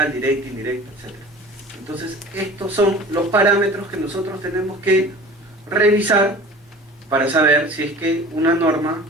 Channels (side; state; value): both; normal; correlation 0.41